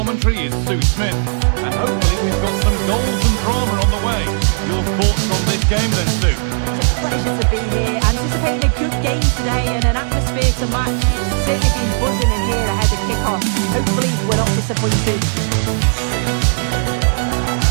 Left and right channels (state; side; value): silent; left; 68 dB below the other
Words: is Sue Smith. And hopefully we've got some goals and drama on the way. Your thoughts on this game then, Sue? It's a pleasure to be here. Anticipating a good game today and an atmosphere to match. It's certainly been buzzing in here ahead of kick-off. Hopefully we're not disappointed.